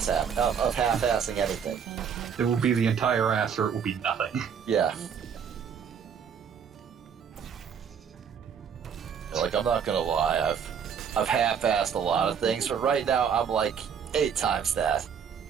anything. It will be the entire ass or it will be nothing. Yeah. Like, I'm not gonna lie, I've half-assed a lot of things, but right now I'm like 8 times that.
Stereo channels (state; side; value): quieter; left; 7.4 dB